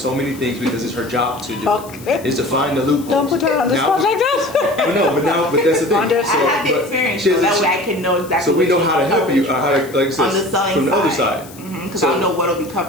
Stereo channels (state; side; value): noise; left; hiss, 20 dB below the sound